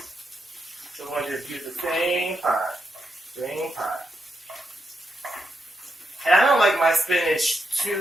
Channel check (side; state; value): both; normal; correlation 0.83